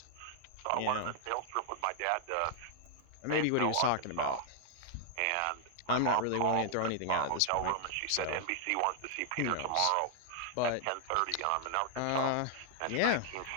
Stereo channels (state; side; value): different; both; correlation 0.00